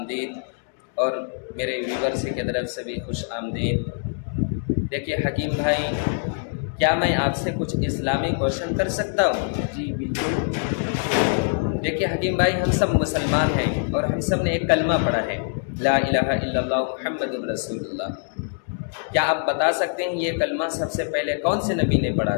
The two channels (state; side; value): silent; right; digital silence